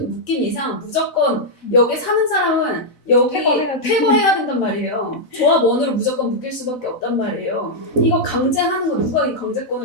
이상 무조건 여기 사는 사람은 여기 퇴거해야 된단 말이에요. 조합원으로 무조건 묶일 수밖에 없단 말이에요. 이거 강제하는 거 누가 이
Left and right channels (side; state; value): right; late; 4.0 ms